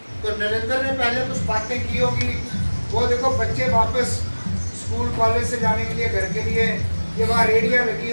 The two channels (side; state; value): both; inverted; correlation -1.00